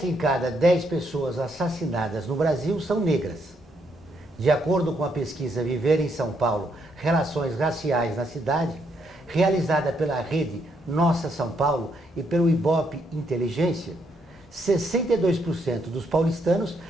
em cada 10 pessoas assassinadas no Brasil são negras. De acordo com a pesquisa Viver em São Paulo, Relações Raciais na Cidade, realizada pela rede Nossa São Paulo e pelo Ibope Inteligência, 62% dos paulistanos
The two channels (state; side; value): normal; both; correlation 0.75